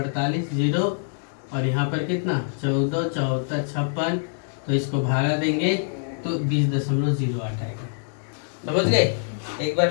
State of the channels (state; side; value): silent; right; digital silence